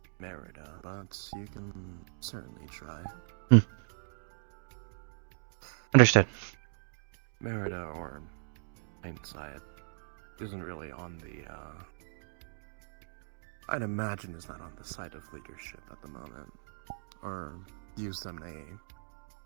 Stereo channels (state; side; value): silent; left; digital silence